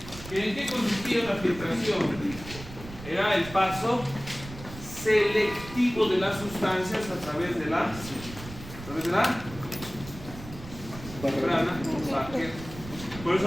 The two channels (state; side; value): noise; right; rumble, 14 dB below the sound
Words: ¿En qué consistía la filtración? Era el paso selectivo de las sustancias a través de la membrana. Por eso